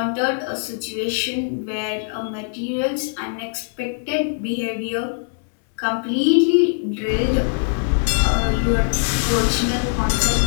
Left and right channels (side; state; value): right; silent; digital silence